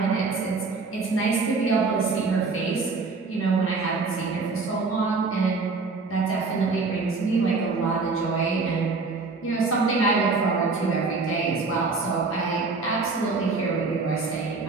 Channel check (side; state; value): left; quieter; 4.1 dB